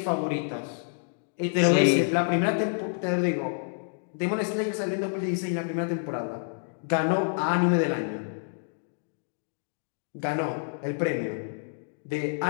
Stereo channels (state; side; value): silent; right; digital silence